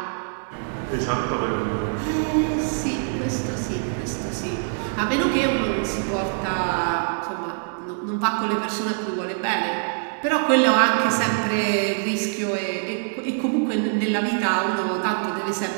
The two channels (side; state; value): left; silent; digital silence